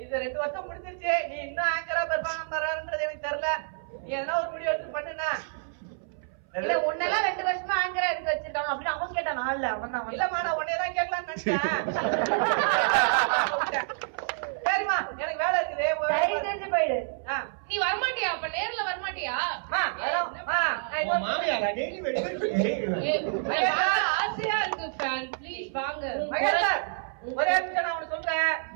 இது 2 வருஷம் முடிஞ்சிருச்சு. நீ இன்னும் ஆங்கரா பெர்ஃபார்ம் பண்றன்றது எனக்கு தெரியல. நீ எதனா ஒரு வீடியோ எடுத்து பண்ணுனா. இல்ல உன்னெல்லாம் 2 வருஷமா ஆங்கரா எடுத்து வச்சிருக்காங்க அப்படின்னு அவன் கேட்டான். நாள்ல அவன் தான் இல்லம்மா நான் உன்னையதான் கேட்கலாம்னு நினைச்சேன். சரிம்மா எனக்கு வேலை இருக்குது. தெரிஞ்சு போயிடு. நீ வரமாட்டியா? அப்ப நேர்ல வரமாட்டியா? ஆசையா இருக்கு ஃபேன் ப்ளீஸ் வாங்க. ஒரே நிமிஷம் நான் உனக்கு சொல்றேன்.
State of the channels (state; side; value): silent; left; 59 dB below the other